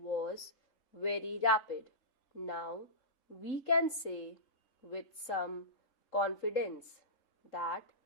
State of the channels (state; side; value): late; right; 3.7 ms